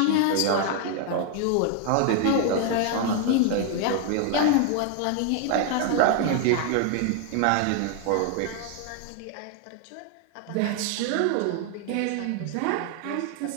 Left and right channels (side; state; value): both; different; correlation 0.00